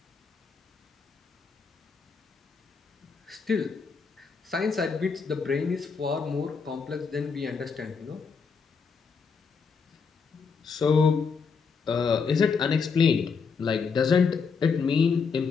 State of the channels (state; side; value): quieter; right; 5.5 dB